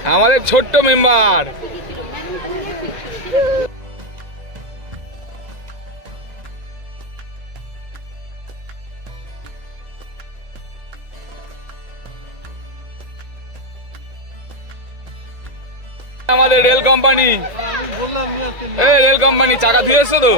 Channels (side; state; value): left; late; 2.0 ms